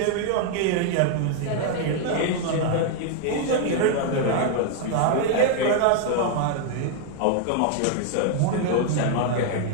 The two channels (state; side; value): different; both; correlation 0.00